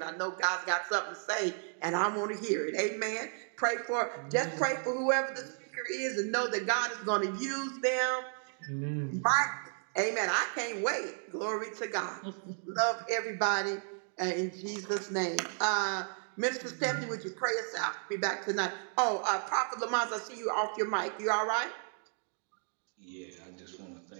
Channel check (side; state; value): left; silent; 55 dB below the other